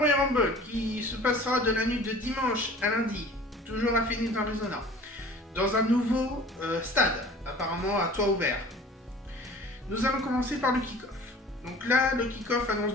Rumble, qui se passera de la nuit de dimanche à lundi, toujours à Phoenix, Arizona, dans un nouveau stade, apparemment à toit ouvert. Nous allons commencer par le kick-off. Donc là, le kick-off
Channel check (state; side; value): normal; both; correlation 0.45